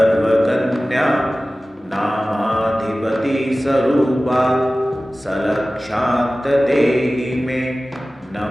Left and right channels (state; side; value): normal; both; correlation 0.97